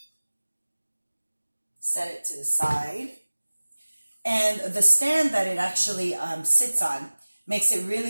set it to the side, and the stand that it actually sits on makes it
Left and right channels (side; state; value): both; inverted; correlation -1.00